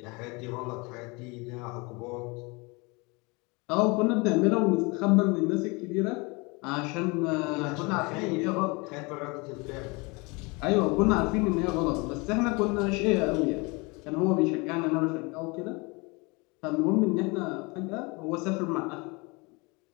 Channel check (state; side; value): quieter; right; 27.6 dB